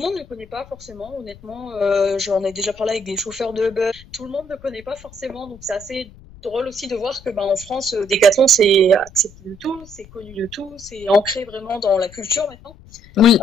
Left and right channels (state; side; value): noise; left; rumble, 21 dB below the sound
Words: ne connaît pas forcément, honnêtement. J'en ai déjà parlé avec des chauffeurs de Uber. Tout le monde ne connaît pas forcément, donc c'est assez drôle aussi de voir que en France, Decathlon, c'est accepté de tout, c'est connu de tout, c'est ancré vraiment dans la culture maintenant. Oui.